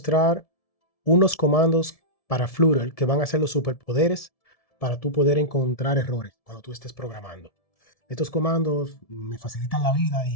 unos comandos para Flutter que van a ser los superpoderes para tú poder encontrar errores cuando tú estés programando. Estos comandos me facilitan la vida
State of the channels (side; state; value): right; late; 1.7 ms